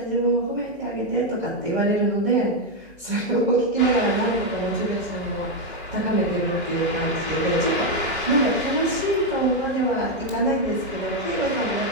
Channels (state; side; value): normal; both; correlation 0.03